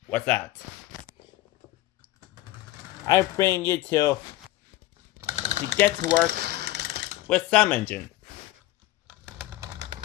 what's that? I bring you to get to work with some engine.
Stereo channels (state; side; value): quieter; right; 16.8 dB